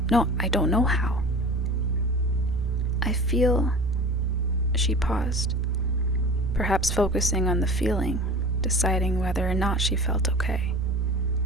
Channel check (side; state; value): both; normal; correlation 0.38